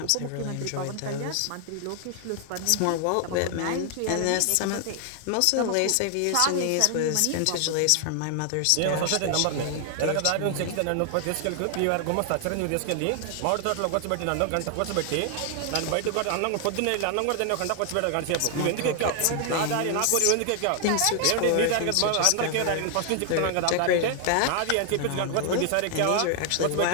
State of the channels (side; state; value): both; different; correlation 0.00